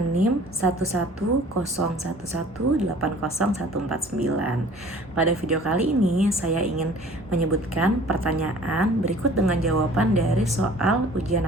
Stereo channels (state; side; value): normal; both; correlation 0.49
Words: NIM 11011801499. Pada video kali ini, saya ingin menyebutkan pertanyaan berikut dengan jawaban dari soal ujian